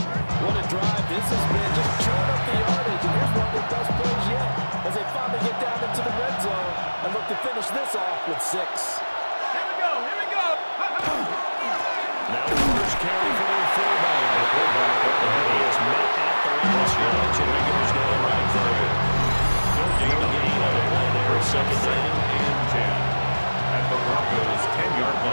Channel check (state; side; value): inverted; both; correlation -1.00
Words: What a drive this has been. Just chewing up the yardage. And here's one of their best plays yet as they finally get down into the red zone and look to finish this off with 6. Now the first carry for their fullback. The fullback up the head is met at the line of scrimmage, and Regulars got it right there. No gain on the play there. 2nd and 10 at the Broncos' 10-yard